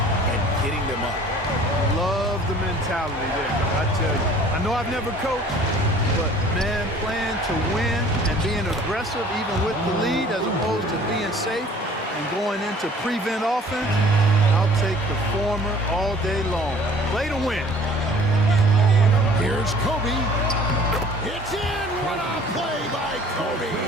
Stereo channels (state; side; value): normal; both; correlation 0.51